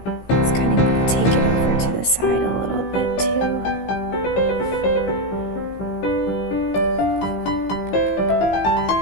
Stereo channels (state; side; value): late; right; 16 ms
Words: Let's kind of take it over to the side a little bit too.